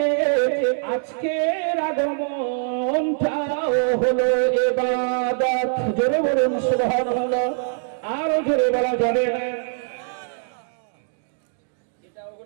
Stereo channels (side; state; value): left; silent; digital silence